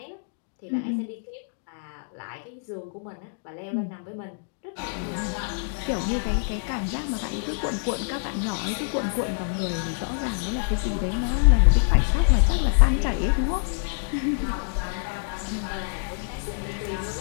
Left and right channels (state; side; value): silent; right; digital silence